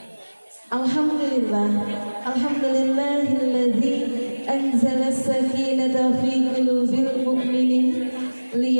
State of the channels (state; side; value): inverted; both; correlation -1.00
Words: Alhamdulillahilladzi anzala as-sakinata fi qulubil mu'minin